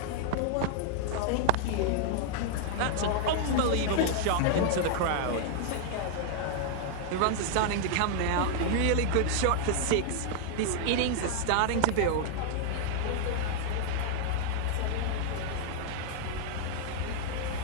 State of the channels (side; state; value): both; different; correlation 0.00